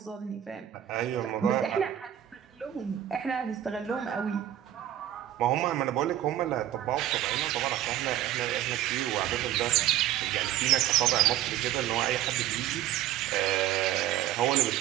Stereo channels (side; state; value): left; quieter; 12.0 dB